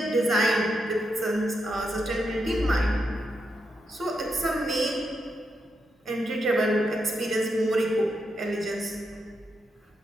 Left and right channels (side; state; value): both; normal; correlation 0.83